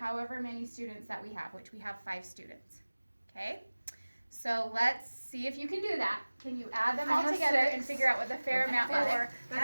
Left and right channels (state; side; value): inverted; both; correlation -1.00